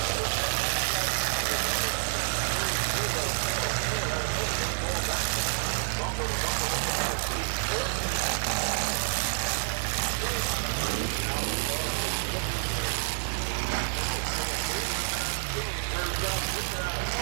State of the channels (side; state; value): left; silent; digital silence